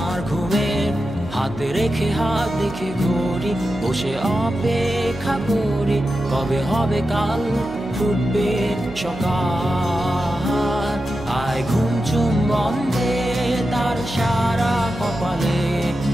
ঘুমের। হাতে রেখে হাত দেখে ঘড়ি, বসে অপেক্ষা করি, কবে হবে কাল, ফুটবে সকাল। আয় ঘুম চুম বন্ধে তার সারা কপালে,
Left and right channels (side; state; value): right; noise; hum, 15 dB below the sound